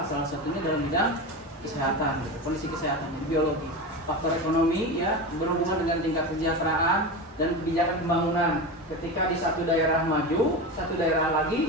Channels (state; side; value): normal; both; correlation 0.23